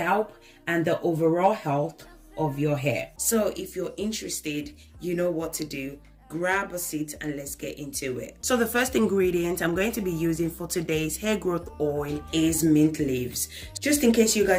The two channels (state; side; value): identical; both; correlation 1.00